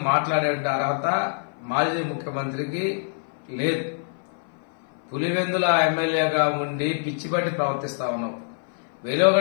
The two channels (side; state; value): right; silent; 57 dB below the other